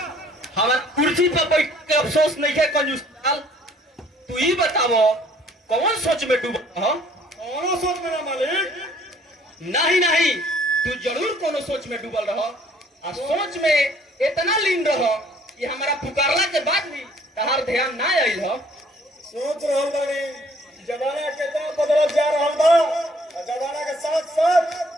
हमार कुर्सी पर बैठ के अफसोस नहीं है कंजूस लाल। तू ही बतावो कौन सोच में डूबा हो? कौनो सोच में ना मालिक। नहीं नहीं, तू जरूर कोनो सोच में डूबल रहो और सोच में इतना लीन रहो कि हमारा पुकारला के बाद भी तहार ध्यान ना आइल हो। सोच रहल बानी जमाना कितना बदलत जा रहल बा और जमाना के साथ साथ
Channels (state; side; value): normal; both; correlation 0.59